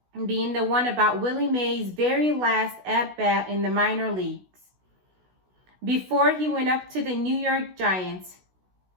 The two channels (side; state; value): left; late; 16 ms